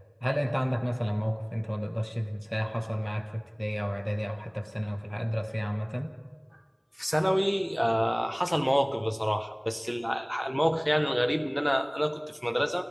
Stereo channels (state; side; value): identical; both; correlation 1.00